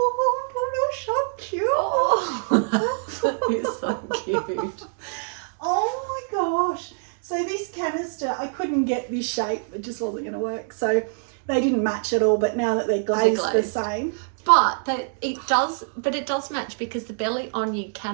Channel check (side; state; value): left; silent; digital silence